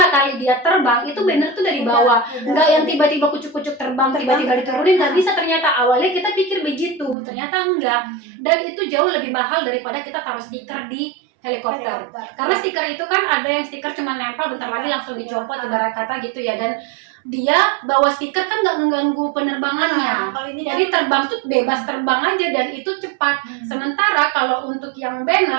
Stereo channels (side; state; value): left; drops out; at 7.2 s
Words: kali dia terbang itu banner tuh dari bawah. Enggak yang tiba-tiba kucuk-kucuk terbang tiba-tiba diturunin, nggak bisa ternyata. Awalnya kita pikir begitu, ternyata enggak. Dan itu jauh lebih mahal daripada kita taruh stiker di helikopter. Karena stiker itu kan ada yang stiker cuma nempel bentar lagi langsung dicopot ibarat kata gitu ya, dan dia bawa stiker kan nggak mengganggu penerbangannya. Jadi terbang tuh bebas terbang aja dan itu cepat. Sementara kalau untuk yang